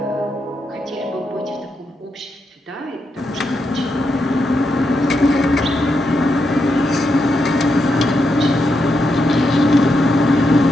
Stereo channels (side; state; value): both; normal; correlation 0.83